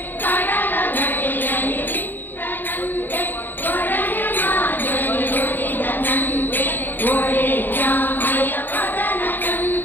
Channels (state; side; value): late; right; 0.091 ms